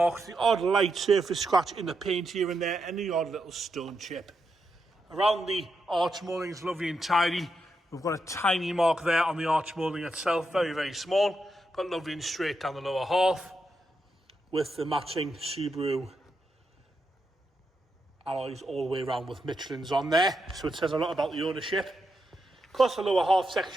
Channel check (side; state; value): both; normal; correlation 0.84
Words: the odd light surface scratch in the paint here and there, and the odd little stone chip. Around the arch moulding is lovely and tidy. We've got a tiny mark there on the arch moulding itself, very, very small, but lovely and straight down the lower half, with the matching Subaru alloys all the way around with Michelin's on there. So it says a lot about the ownership. Across the lower half